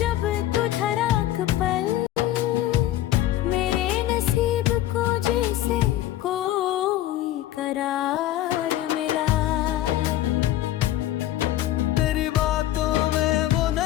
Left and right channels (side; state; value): right; quieter; 13.8 dB